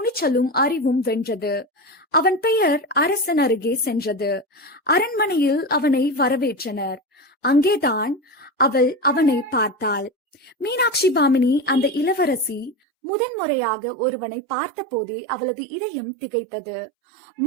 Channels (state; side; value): drops out; left; at 12.8 s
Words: அறிவும் வென்றது. அவன் பெயர் அரசன் அருகே சென்றது. அரண்மனையில் அவனை வரவேற்றனர். அங்கேதான் அவனை பார்த்தாள். மீனாட்சி பாமினி, அந்த இளவரசி, முதன்முறையாக ஒருவனை பார்த்த போதே அவளது இதயம் திகைத்தது.